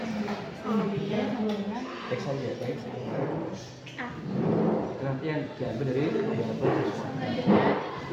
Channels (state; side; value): identical; both; correlation 1.00